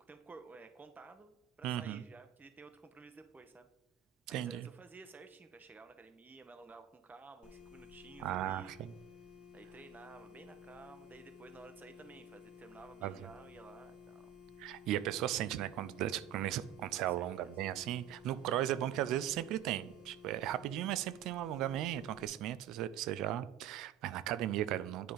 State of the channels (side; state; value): left; quieter; 11.1 dB